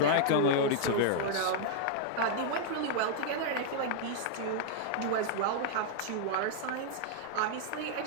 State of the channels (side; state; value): both; different; correlation -0.01